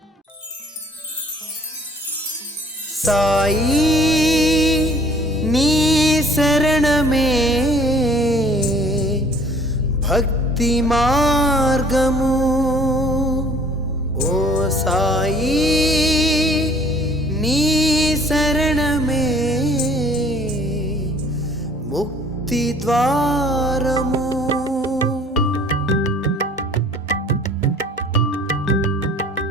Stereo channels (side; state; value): both; normal; correlation 0.54